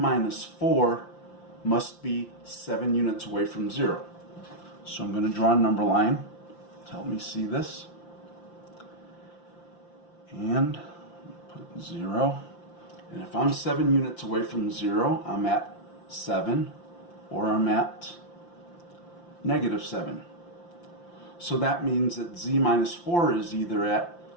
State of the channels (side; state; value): right; late; 5.8 ms